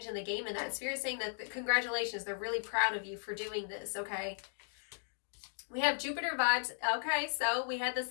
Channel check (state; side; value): silent; right; digital silence